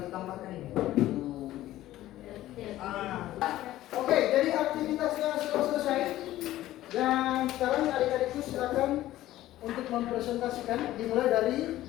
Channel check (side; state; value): right; quieter; 14.8 dB